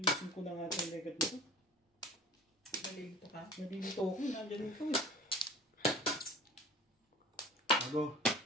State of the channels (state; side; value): normal; both; correlation 0.42